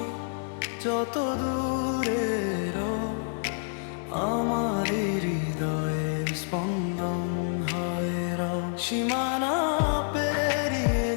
যত দূরেরও আমার হৃদয়ের স্পন্দন হয় রও। সীমানা পেরিয়ে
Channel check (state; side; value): silent; right; 59 dB below the other